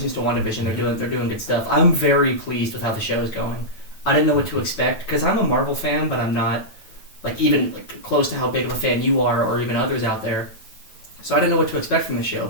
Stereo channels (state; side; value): late; right; 9.2 ms